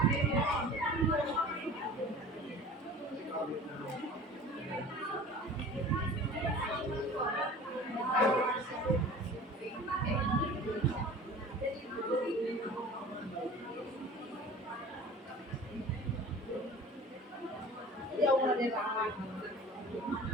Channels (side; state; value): both; normal; correlation 0.42